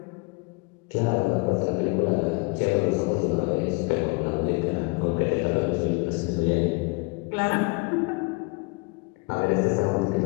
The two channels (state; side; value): quieter; right; 29.0 dB